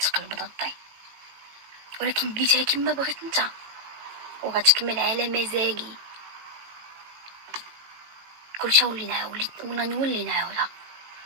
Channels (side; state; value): left; late; 18 ms